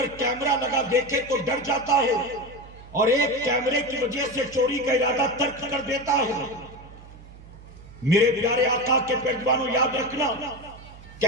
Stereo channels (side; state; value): right; noise; hum, 19 dB below the sound